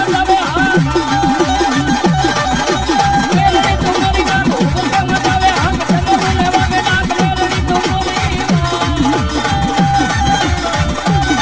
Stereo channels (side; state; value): both; identical; correlation 1.00